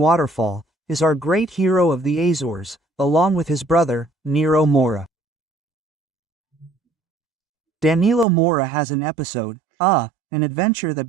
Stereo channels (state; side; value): drops out; left; at 8.2 s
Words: is our great hero of the Azores, along with his brother, Nero Moura. Danilo Moura has an episode, an adventure that